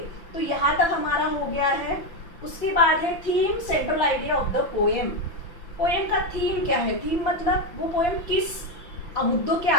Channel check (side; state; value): right; late; 5.8 ms